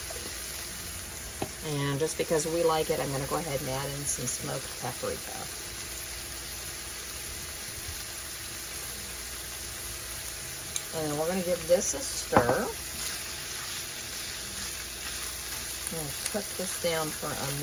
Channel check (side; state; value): both; identical; correlation 1.00